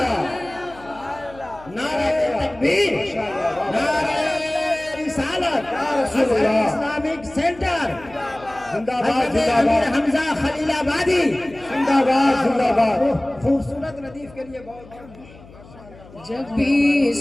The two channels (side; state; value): left; noise; hum, 22 dB below the sound